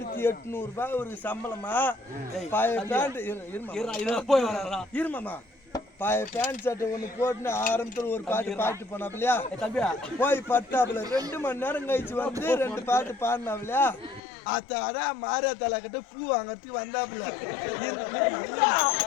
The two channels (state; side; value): drops out; right; at 14.2 s